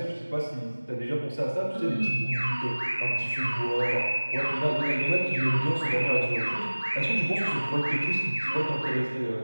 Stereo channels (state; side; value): inverted; both; correlation -1.00